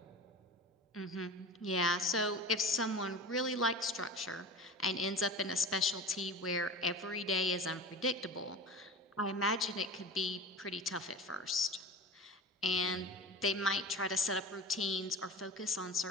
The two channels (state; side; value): normal; both; correlation 0.32